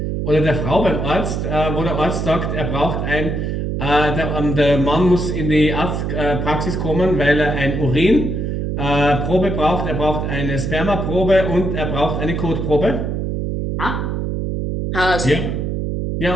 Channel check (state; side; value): noise; right; hum, 2 dB below the sound